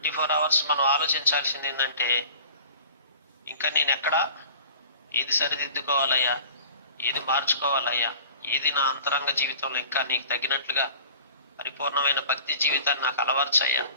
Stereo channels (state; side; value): inverted; both; correlation -0.45